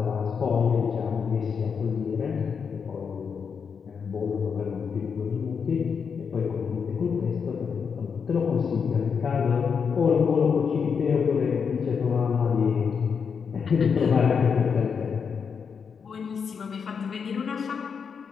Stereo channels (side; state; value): right; quieter; 6.3 dB